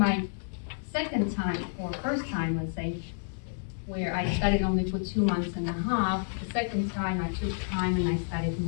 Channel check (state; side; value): silent; right; digital silence